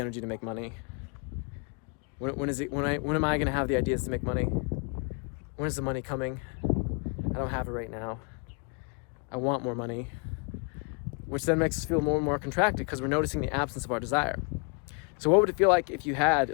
to make money. When am I gonna have the ideas to make money? When is the money coming? I don't have it right now. I want more money, which then makes us feel more and more contracted because we're noticing the absence of our desire. So what would it feel like if you had,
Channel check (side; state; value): right; quieter; 36.9 dB